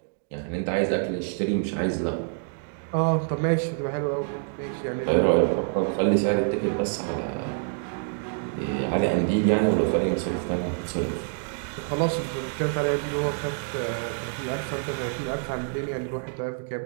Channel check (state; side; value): silent; left; 60 dB below the other